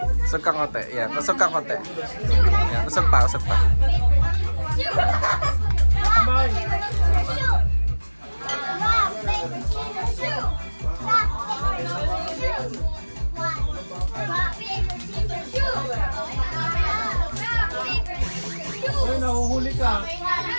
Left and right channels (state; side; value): inverted; both; correlation -1.00